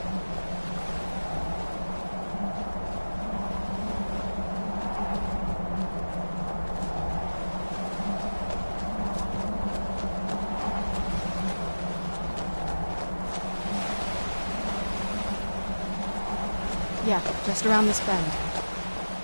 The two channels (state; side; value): inverted; both; correlation -1.00